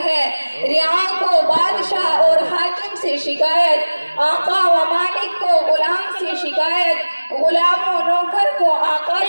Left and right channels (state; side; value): inverted; both; correlation -1.00